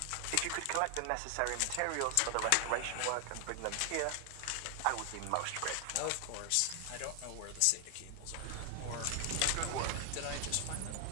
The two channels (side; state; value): both; different; correlation 0.00